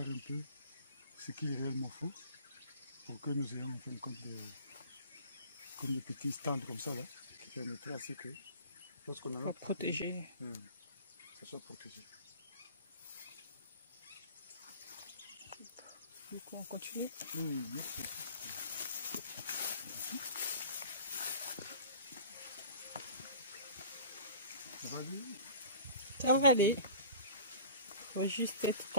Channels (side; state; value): both; inverted; correlation -0.43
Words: un peu ce qu'il réellement faut pour que nous ayons en fin de compte comme des petits stands comme ça là, qui permettraient à ce que lorsqu'on a pour protéger, ça soit protégé. Du coup, on continue. Ça va aller? Ça va aller. Il faut juste être